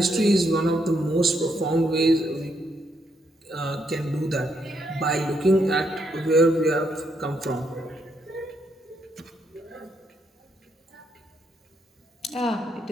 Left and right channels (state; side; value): normal; both; correlation 0.77